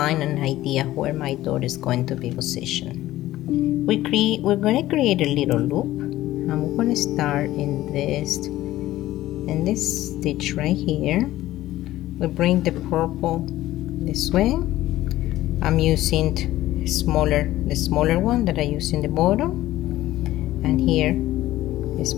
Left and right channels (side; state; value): right; quieter; 15.3 dB